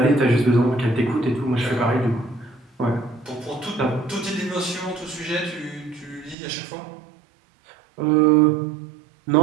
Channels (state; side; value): drops out; left; at 6.4 s